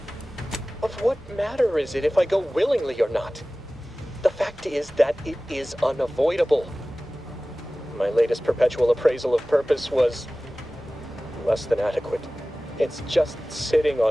Of what matter is it if I go willingly or not? The fact fact is that it is unavoidable. My latest perpetual appraisal of purpose was less than adequate. It's just sitting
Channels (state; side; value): normal; both; correlation 0.97